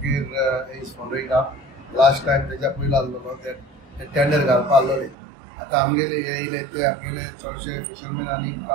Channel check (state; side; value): drops out; left; at 5.2 s